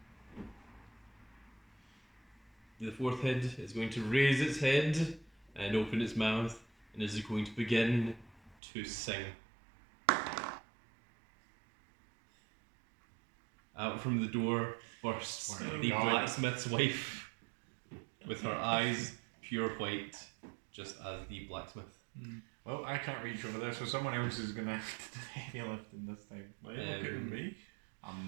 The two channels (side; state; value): left; drops out; at 8.6 s